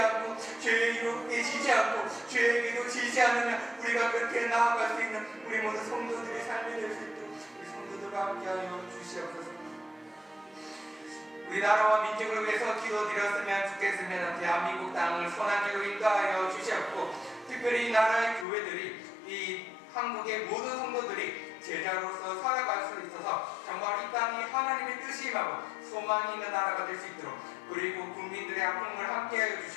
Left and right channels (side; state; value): right; drops out; at 18.4 s